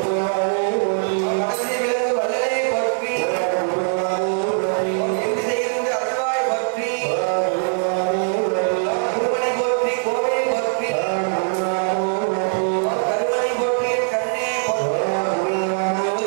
மனசை விளங்கு வல்லலே போற்றி, எங்கிருந்து அருள்வாய் போற்றி, குருமணி போற்றி, கோவை போற்றி, கருமணி போற்றி, கண்ணே போற்றி,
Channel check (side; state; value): left; silent; digital silence